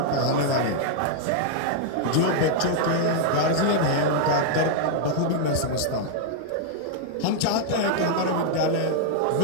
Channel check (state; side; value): different; both; correlation -0.01